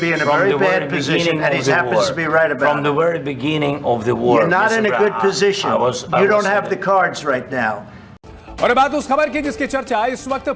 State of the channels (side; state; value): both; identical; correlation 1.00